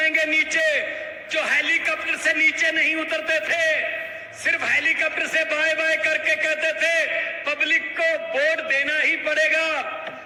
नीचे। जो हेलीकॉप्टर से नीचे नहीं उतरते थे, सिर्फ हेलीकॉप्टर से बाय बाय करके कहते थे पब्लिक को वोट देना ही पड़ेगा।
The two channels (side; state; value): both; identical; correlation 1.00